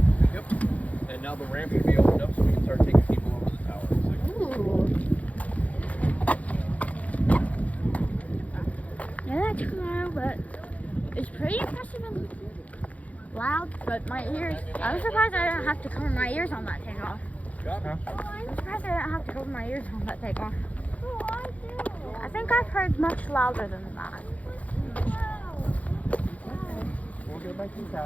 Yep. And now the ramp should be opened up so we can start taking people over the tower. Yeah, that's cool, but it's pretty impressive and loud. But my ears, I was surprised I didn't have to cover my ears on that takeoff. I'm surprised I didn't have to cover my ears on that takeoff. Oh, I do. I think I've heard much louder than that. We'll go back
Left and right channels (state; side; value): late; right; 0.069 ms